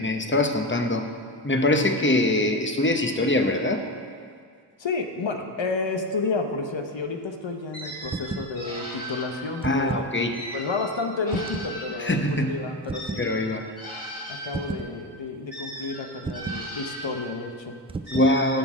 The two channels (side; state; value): both; normal; correlation 0.19